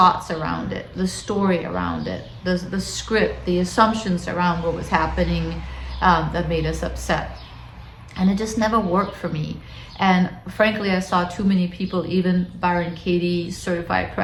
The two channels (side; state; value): both; identical; correlation 1.00